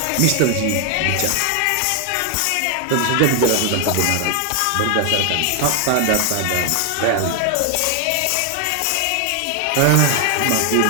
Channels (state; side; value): different; both; correlation 0.00